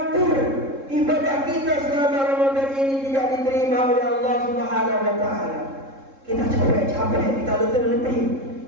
ibadah kita selama Ramadan ini tidak diterima oleh Allah Subhanahu wa taala. Kita capek-capek, kita letih-letih,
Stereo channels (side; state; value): left; late; 3.7 ms